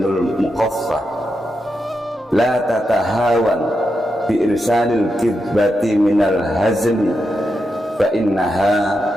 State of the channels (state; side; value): normal; both; correlation 0.86